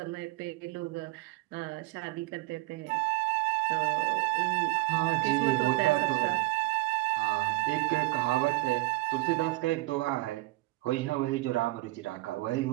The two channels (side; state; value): left; quieter; 20.5 dB